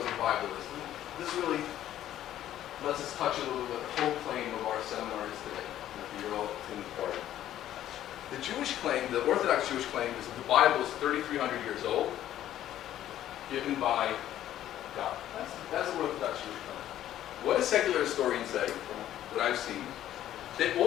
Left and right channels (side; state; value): right; quieter; 12.2 dB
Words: what the Bible is. This really lets us touch a little bit the whole claim of our seminar is today. You're all in part. The Jewish claim, the Orthodox Jewish claim, is that the Bible is 3,300 years old, given by God. That's the Orthodox Jewish claim. What do secular historians say, from what I've seen? They